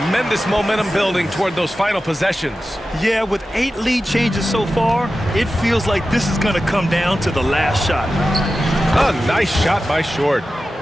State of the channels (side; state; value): both; normal; correlation 0.93